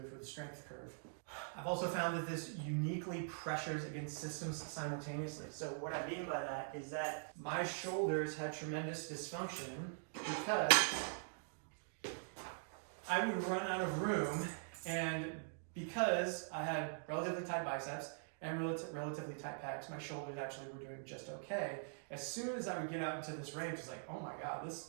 for the strength curve. I've also found that this uniquely pressures against systems simultaneously. So what I mean by that is that my shoulders had tremendous dysfunction because I would run out of room, and because I had relatively tight biceps and relatively tight pecs, my shoulders actually were doing just okay. As soon as I would get out into this range, it's like, oh my God,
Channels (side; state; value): left; silent; digital silence